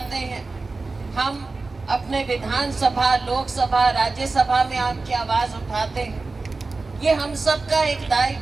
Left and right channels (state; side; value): quieter; left; 3.7 dB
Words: हैं, हम अपने विधानसभा, लोकसभा, राज्यसभा में आपकी आवाज उठाते हैं। ये हम सबका एक